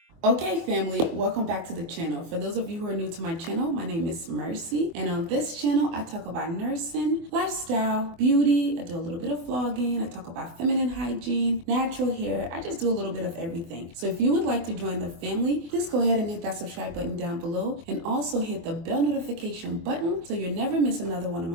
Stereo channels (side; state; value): left; late; 24 ms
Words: Okay family, welcome back to the channel. For those of you who are new to my channel, my name is Mercy, and on this channel I talk about nursing, lifestyle, beauty. I do a little bit of vlogging. I talk about feminine hygiene, natural hair. I just do a little bit of everything. So if you would like to join the family, please go ahead and hit that subscribe button down below and also hit the bell notification button so you'll never miss another one of